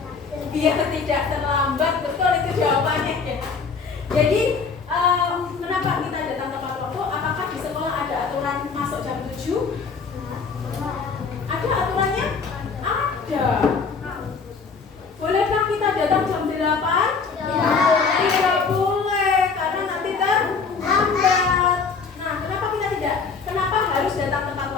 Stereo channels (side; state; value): right; quieter; 5.2 dB